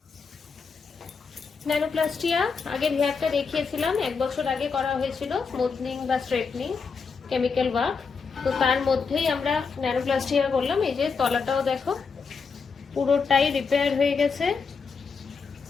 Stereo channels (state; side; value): quieter; right; 5.3 dB